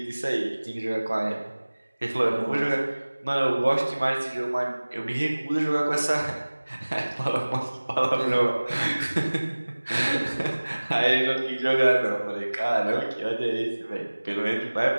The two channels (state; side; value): inverted; both; correlation -1.00